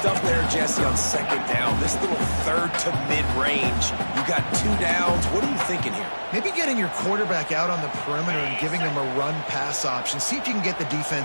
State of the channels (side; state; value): both; inverted; correlation -1.00